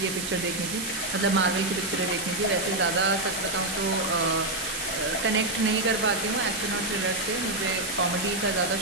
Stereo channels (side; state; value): right; noise; hiss, 6 dB below the sound